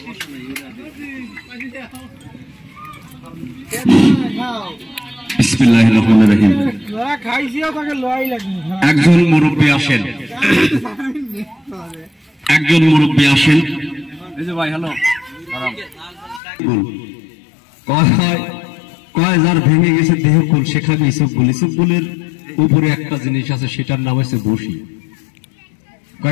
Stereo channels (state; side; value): drops out; right; at 16.4 s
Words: বিসমিল্লাহির রহমানির রহিম। একজন মুরব্বী আসেন, একজন মুরব্বী আসেন। এই যে ভাই, হ্যালো। কয় যার ভেঙে গেছে দেহ কোন, সেখানে ইসবগুল। ইসবগুলের উপরে একটা জিনিস আছে, সেটার নাম হচ্ছে বসি।